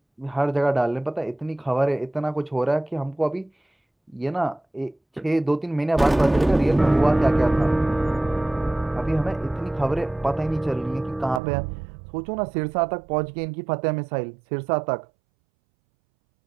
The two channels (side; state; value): left; drops out; at 11.4 s